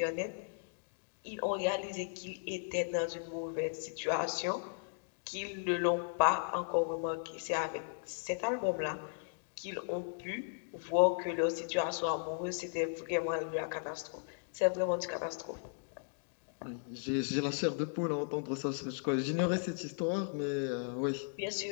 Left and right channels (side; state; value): right; silent; digital silence